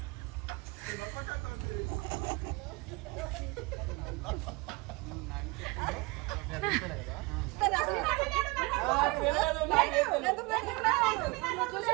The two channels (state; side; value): quieter; left; 25.5 dB